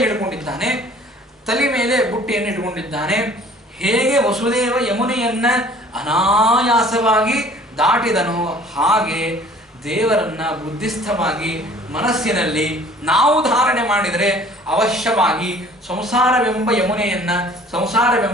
ಇಟ್ಕೊಂಡಿದ್ದಾನೆ, ತಲೆ ಮೇಲೆ ಬುಟ್ಟಿಯನ್ನು ಇಟ್ಕೊಂಡಿದ್ದಾನೆ, ಹೇಗೆ ವಸುದೇವ ಯಮುನೆಯನ್ನ ಅನಾಯಾಸವಾಗಿ ದಾಟಿದನೋ ಹಾಗೆ ದೇವರನ್ನ ಬುದ್ಧಿಸ್ಥವಾಗಿ ಮನಸ್ಸಿನಲ್ಲಿ ನಾವು ಧಾರಣೆ ಮಾಡಿದರೆ ಅವಶ್ಯವಾಗಿ ಸಂಸಾರವೆಂಬ ಯಮುನೆಯನ್ನ,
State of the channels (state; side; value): normal; both; correlation 0.52